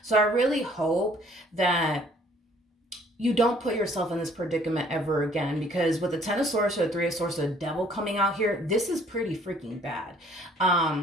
So I really hope that you don't put yourself in this predicament ever again, because with the Ten of Swords or the Three of Swords, the Devil coming out here, this is pretty freaking bad.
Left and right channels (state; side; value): normal; both; correlation 0.59